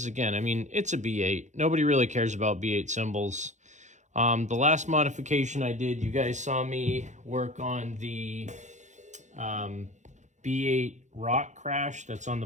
Again, I mean, it's a B8. Nobody really cares about B8 cymbals. The last modification I did, you guys saw me work on the B8 Rock Crash that's on the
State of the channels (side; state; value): left; late; 0.35 ms